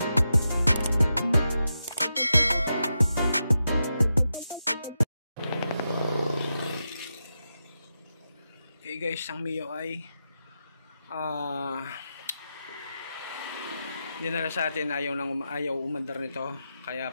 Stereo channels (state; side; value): inverted; both; correlation -0.88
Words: Okay guys, ang Mio ay dinala sa atin, ayaw umandar nito,